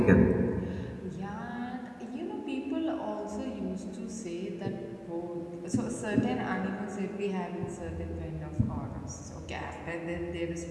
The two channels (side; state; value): both; identical; correlation 1.00